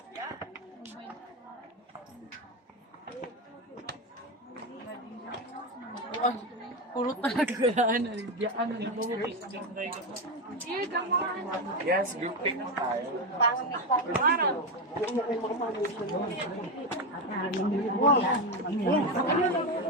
Puro talaga galaan. Yes, group pic mo tayo.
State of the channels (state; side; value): normal; both; correlation 0.12